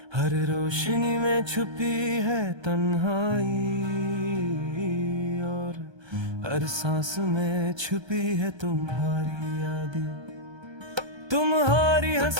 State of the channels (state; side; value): late; left; 1.3 ms